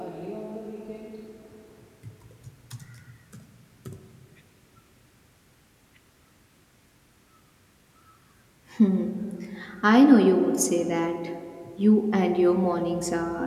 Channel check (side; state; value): both; identical; correlation 1.00